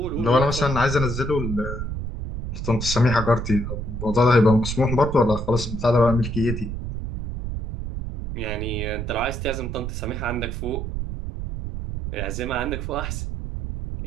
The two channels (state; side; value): noise; right; rumble, 5 dB below the sound